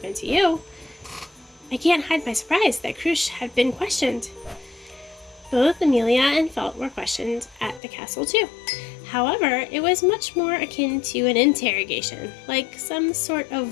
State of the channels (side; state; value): right; drops out; at 7.8 s